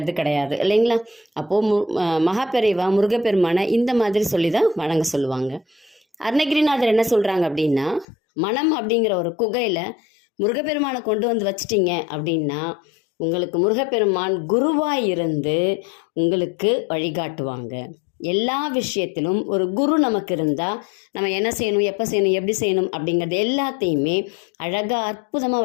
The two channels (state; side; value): drops out; right; at 8.1 s